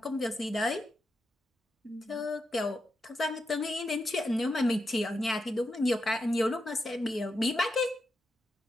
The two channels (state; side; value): normal; both; correlation 0.86